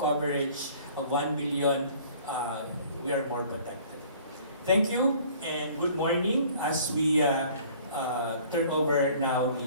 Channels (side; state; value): both; inverted; correlation -0.53